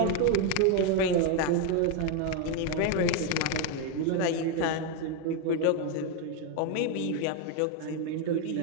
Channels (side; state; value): both; different; correlation 0.01